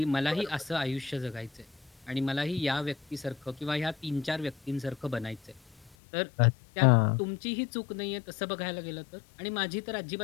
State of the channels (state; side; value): drops out; right; at 5.9 s